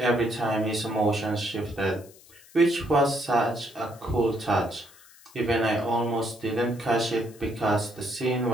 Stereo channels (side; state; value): left; noise; hiss, 24 dB below the sound